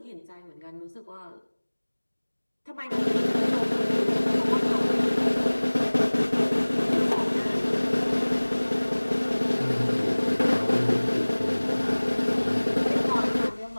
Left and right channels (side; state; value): both; inverted; correlation -1.00